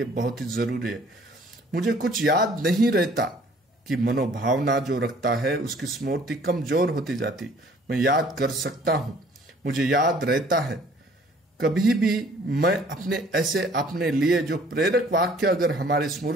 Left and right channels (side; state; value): both; normal; correlation 0.56